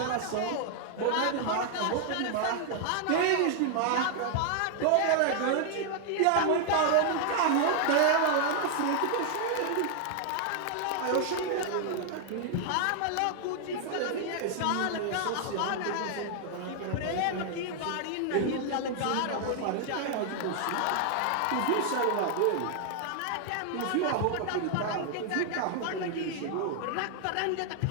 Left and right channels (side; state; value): both; different; correlation 0.00